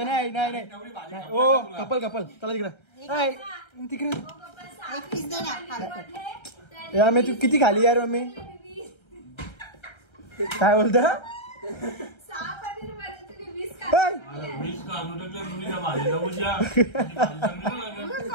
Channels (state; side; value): late; right; 1.3 ms